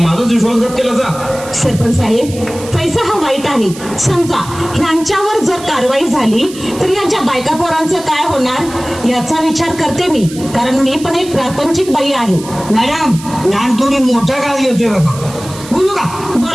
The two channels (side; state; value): right; noise; hiss, 15 dB below the sound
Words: विश्वासघात केला जा. सरपंच साहेब, पैसा हा वाईट आहे. समजा ह्यांच्यावर जर कारवाई झाली तर यांच्या बायका पोरांचं काय होणार याचा विचार करते मी, कारण मी पण एक प्रापंचिक बाई आहे. मॅडम, लहान थोडी मोठा काळ घेतोय बघा. बोलू का?